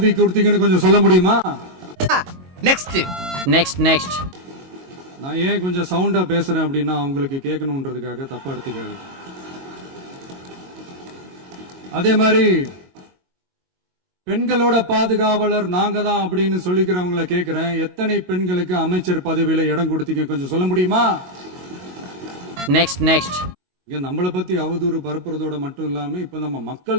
கொடுத்தீங்கன்னு கொஞ்சம் சொல்ல முடியுமா? Next next next. நான் ஏன் கொஞ்சம் சவுண்டா பேசுறேன் அப்படின்னா அவங்களுக்கு கேட்கணுன்றதுக்காக, தப்பா எடுத்துக்காது. அதே மாதிரி பெண்களோட பாதுகாவலர் நாங்க தான் அப்படின்னு சொல்லிக்கிறவங்களை கேட்கிறேன், எத்தனை பெண்களுக்கு அமைச்சர் பதவியில இடம் கொடுத்தீங்க கொஞ்சம் சொல்ல முடியுமா? Next next. இங்க நம்மளை பத்தி அவதூறு பரப்புறதோட மட்டும் இல்லாம இப்ப நம்ம மக்கள்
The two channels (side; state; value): left; late; 22 ms